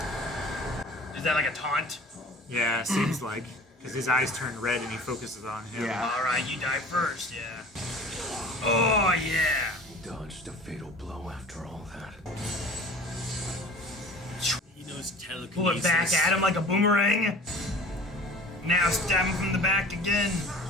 Is that like a taunt? Yeah, seems like. Because his eyes turn red and he focuses on him. Yeah. Alright, you die first, yeah. Oh yeah. He dodged a fatal blow after all that. He knows telekinesis. Pull it back at him like a boomerang. Now stab him from the back again.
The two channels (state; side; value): normal; both; correlation 0.43